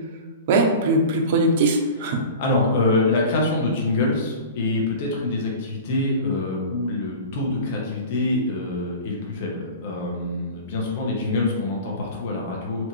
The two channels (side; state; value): both; inverted; correlation -0.35